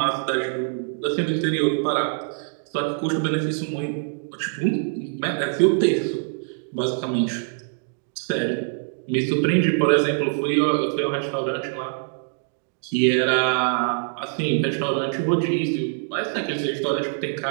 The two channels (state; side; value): silent; left; digital silence